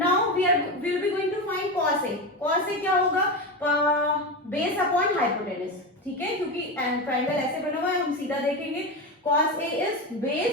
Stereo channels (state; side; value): normal; both; correlation 0.18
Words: we will be going to find cos A. Cos A क्या होगा? Base upon hypotenuse. ठीक है, क्योंकि triangle ऐसे बना हुआ है, हम सीधा देखेंगे. Cos A is